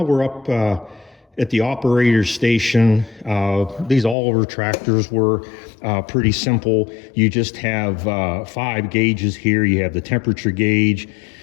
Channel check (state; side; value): drops out; right; at 4.2 s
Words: we're up at the operator station. These Oliver tractors were pretty simple. You just have 5 gauges here. You have the temperature gauge,